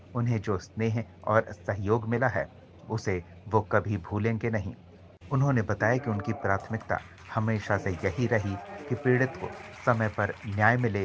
उन्हें जो स्नेह और सहयोग मिला है, उसे वो कभी भूलेंगे नहीं। उन्होंने बताया कि उनकी प्राथमिकता हमेशा से यही रही कि पीड़ित को समय पर न्याय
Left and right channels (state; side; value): identical; both; correlation 1.00